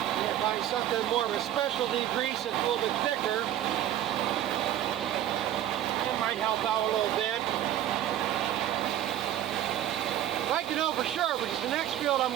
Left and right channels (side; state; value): left; quieter; 12.0 dB